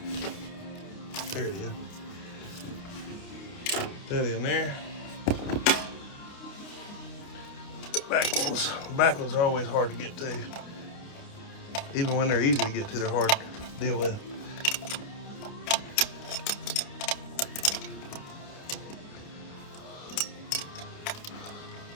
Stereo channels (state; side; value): late; right; 29 ms